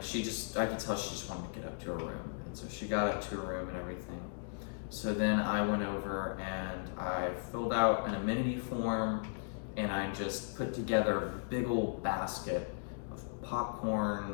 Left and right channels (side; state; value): right; silent; digital silence